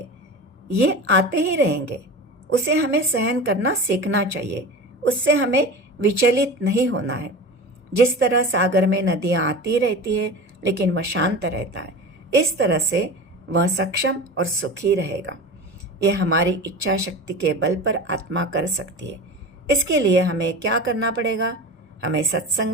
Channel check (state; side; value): normal; both; correlation 0.31